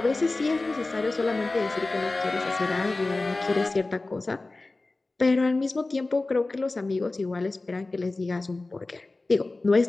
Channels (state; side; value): quieter; right; 3.2 dB